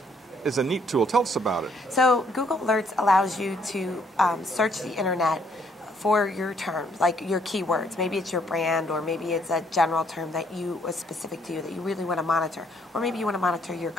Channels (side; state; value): both; normal; correlation 0.68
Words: is a neat tool. Tell us about it. So Google Alerts allows you to search the internet for your terms, like your keywords. Maybe it's your brand, or maybe it's a general term that is specific to you that you really want to monitor. Or maybe you want to monitor your